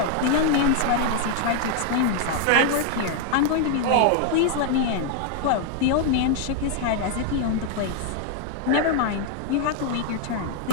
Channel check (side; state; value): both; different; correlation 0.00